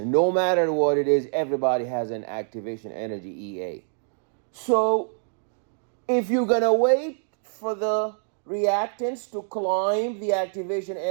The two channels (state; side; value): silent; left; digital silence